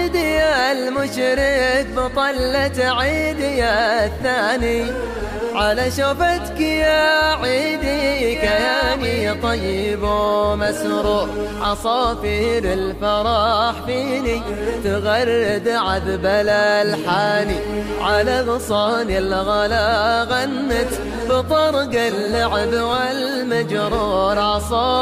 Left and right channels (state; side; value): identical; both; correlation 1.00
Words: يا المشرق بطلة عيدي يا الثاني، على شفتك يا عيدي كياني طيب ومسرور. عصافير الفرح فيني تغرد عذب الألحان، على غصان الغلا غنت بطرق اللعب والمجرور.